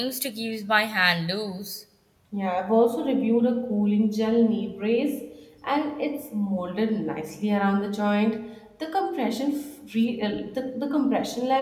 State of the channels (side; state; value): both; identical; correlation 1.00